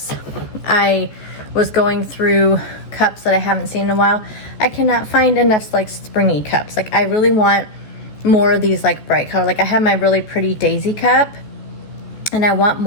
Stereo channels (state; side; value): late; right; 14 ms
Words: I was going through cups that I haven't seen in a while. I cannot find enough like springy cups. Like I really want more of these like bright color. Like I have my really pretty daisy cup, and I want